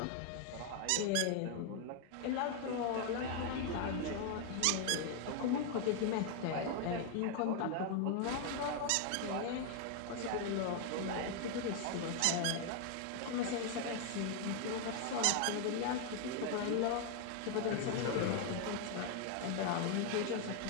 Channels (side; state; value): both; different; correlation 0.00